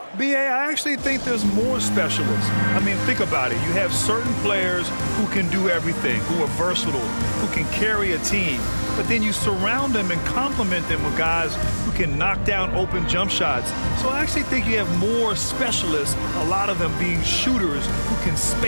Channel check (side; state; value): both; inverted; correlation -1.00